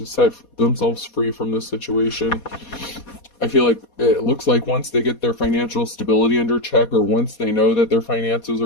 set themselves free from this situation. I feel like it looks like once they get their financial stability under check, or once they know that their finances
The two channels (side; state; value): right; late; 4.2 ms